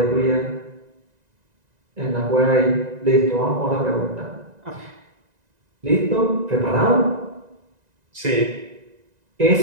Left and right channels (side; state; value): left; late; 1.9 ms